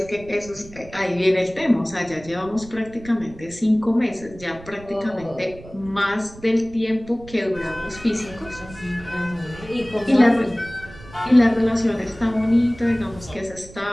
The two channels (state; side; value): noise; right; rumble, 18 dB below the sound